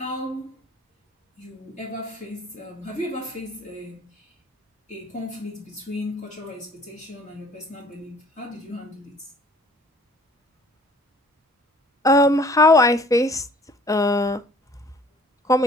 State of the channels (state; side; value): normal; both; correlation 0.54